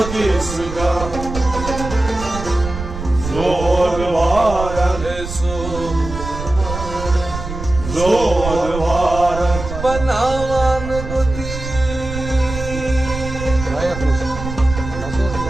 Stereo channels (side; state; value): right; noise; rumble, 8 dB below the sound